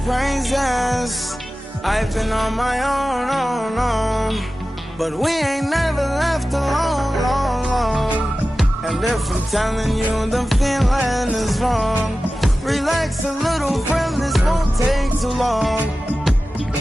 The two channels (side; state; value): both; normal; correlation 0.95